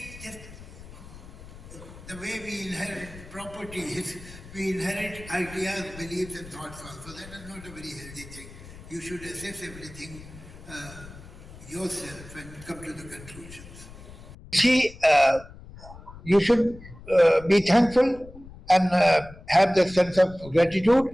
just, the way we inherit properties, we inherit ideas, beliefs and thoughts also. That is not a very healthy thing. You should assess everything yourself and come to the conclusions. See, you should be thankful and have the sense of gratitude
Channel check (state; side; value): noise; left; rumble, 17 dB below the sound